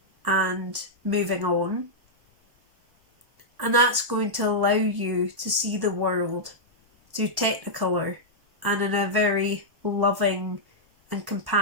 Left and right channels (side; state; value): left; late; 1.1 ms